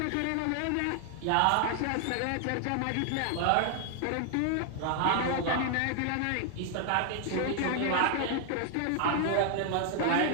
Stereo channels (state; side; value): different; both; correlation 0.00